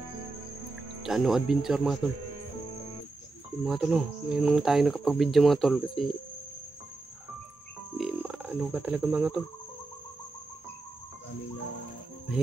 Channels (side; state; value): left; quieter; 3.3 dB